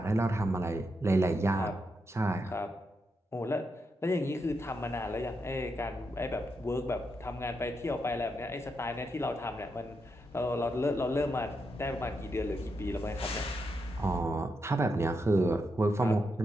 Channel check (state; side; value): normal; both; correlation 0.83